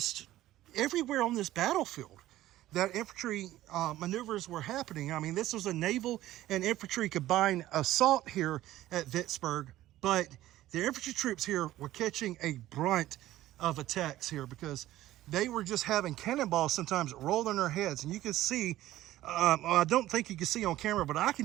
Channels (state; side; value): quieter; left; 14.9 dB